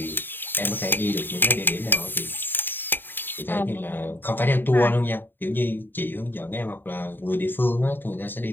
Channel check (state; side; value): late; right; 0.095 ms